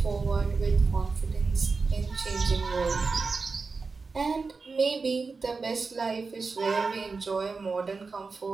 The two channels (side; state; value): left; quieter; 4.4 dB